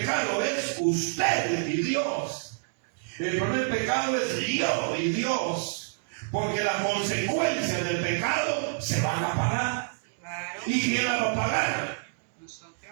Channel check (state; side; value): silent; left; digital silence